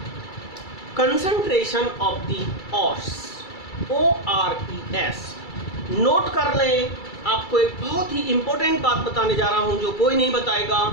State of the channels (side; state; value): right; late; 2.3 ms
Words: concentration of the ores, ORES। Note कर लें, आपको एक बहुत ही इंपॉर्टेंट बात बताने जा रहा हूं जो कोई नहीं बताएगा।